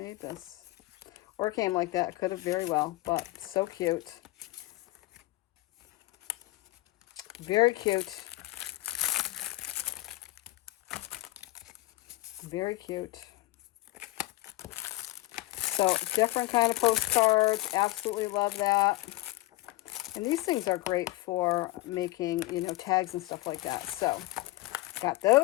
this. Or it came like that. Could have very well, but so cute. Very cute. Very cute. So different kind of postcards. Absolutely love that. And these things are great for making, you know, tags and stuff like that. So, got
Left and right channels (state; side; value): quieter; right; 19.2 dB